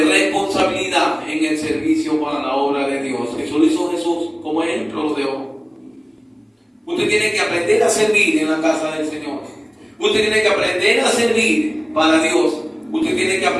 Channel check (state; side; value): identical; both; correlation 1.00